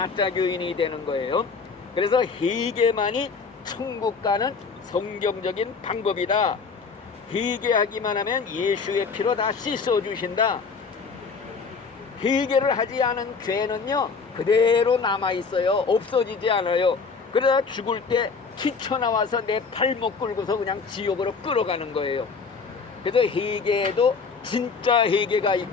교인이 되는 거예요. 그래서 회개만이 천국 가는 성경적인 방법이다. 회개하기만 하면 예수의 피로 다 씻어주신다. 회개를 하지 않은 죄는요 그대로 남아있어요. 없어지지 않아요. 그러다 죽을 때 튀쳐나와서 내 발목 끌고서 그냥 지옥으로 끌어가는 거예요. 그래서 회개에도 진짜 회개가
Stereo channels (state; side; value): quieter; right; 5.0 dB